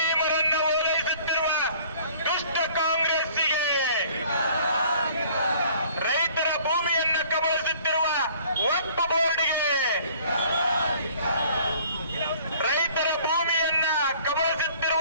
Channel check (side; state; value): both; inverted; correlation -0.53